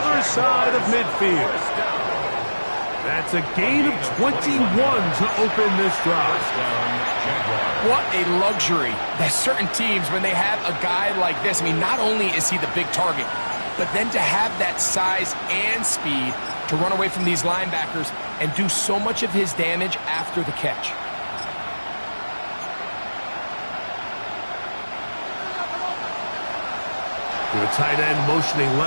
side of midfield. That's a gain of 21 to open this drive. What a luxury. There's certain teams, when they have a guy like this, I mean, not only is he the big target, but then to have that size and speed to run away from these linebackers and do so much of his damage after the catch. The tight end motioning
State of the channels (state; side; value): inverted; both; correlation -1.00